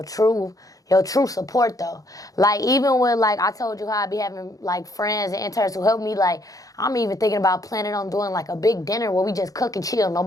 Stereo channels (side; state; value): right; late; 0.17 ms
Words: true support though. Like even with like I told you how I be having like friends and interns who help me, like I'm even thinking about planning on doing like a big dinner where we just cook and chill.